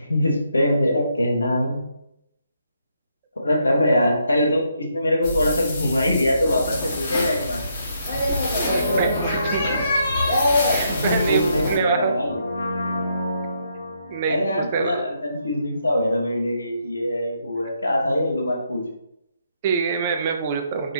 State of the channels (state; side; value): inverted; both; correlation -0.76